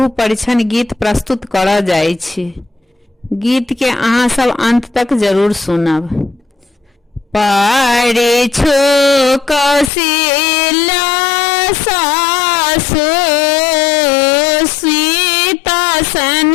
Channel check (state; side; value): drops out; right; at 9.9 s